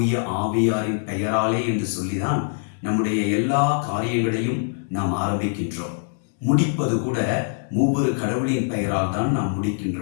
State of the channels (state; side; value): silent; right; 63 dB below the other